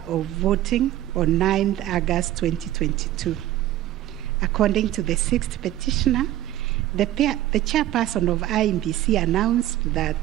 of voting on 9th August 2022. According to the sixth petitioner, the chairperson of IEBC announced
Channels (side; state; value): left; quieter; 13.8 dB